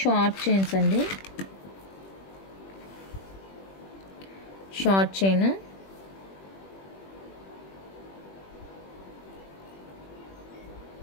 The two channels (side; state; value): right; late; 21 ms